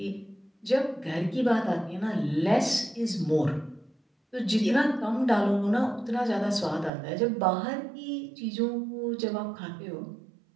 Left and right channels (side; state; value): left; drops out; at 6.9 s